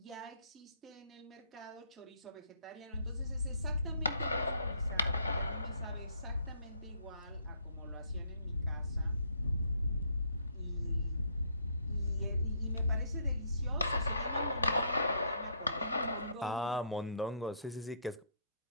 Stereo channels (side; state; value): both; inverted; correlation -0.66